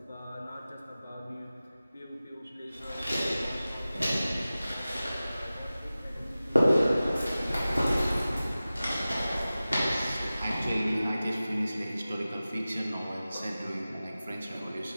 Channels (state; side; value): inverted; both; correlation -0.96